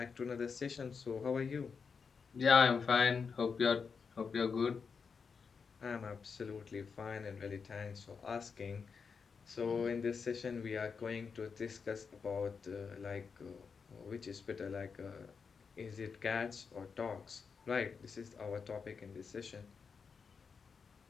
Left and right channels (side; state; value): right; quieter; 5.6 dB